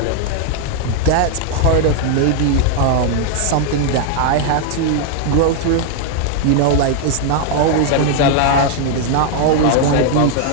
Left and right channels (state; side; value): different; both; correlation 0.00